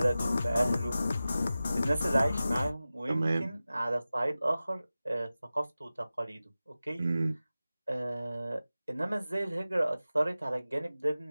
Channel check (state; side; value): inverted; both; correlation -0.95